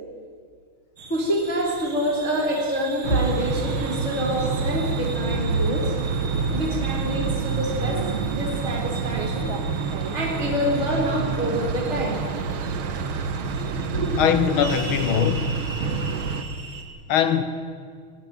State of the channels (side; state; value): right; late; 6.4 ms